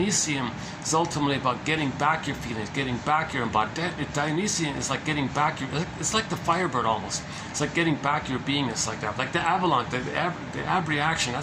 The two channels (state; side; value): identical; both; correlation 1.00